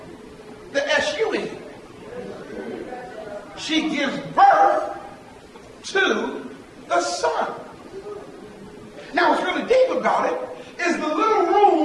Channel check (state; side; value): identical; both; correlation 1.00